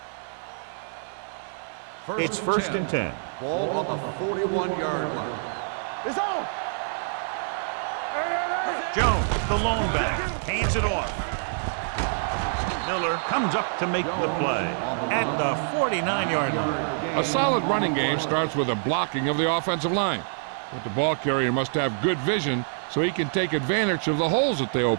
It's first and 10. Ball on the 41-yard line. It's on. Jones, the lone back, hands it off. Miller comes up to make the play at the 49-yard line. A solid running game starts with a blocking of the offensive line. But the ball carrier must have good vision so he can take advantage of the holes that they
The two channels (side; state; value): left; silent; 61 dB below the other